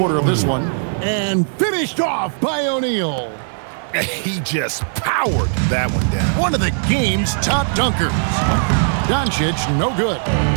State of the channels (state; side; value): silent; left; 66 dB below the other